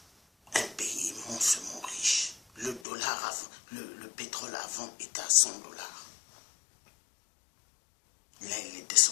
Un pays immensement riche. Le dollar, le pétrole avant était à 100 $. Là, il est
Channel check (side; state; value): right; drops out; at 2.8 s